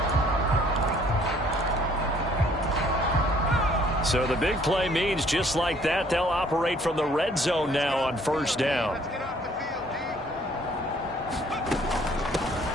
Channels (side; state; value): both; normal; correlation 0.60